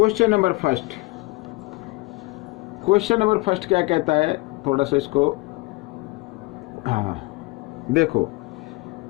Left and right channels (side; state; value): right; quieter; 23.4 dB